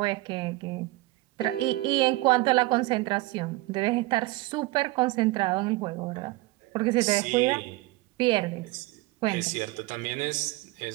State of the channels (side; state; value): left; quieter; 19.8 dB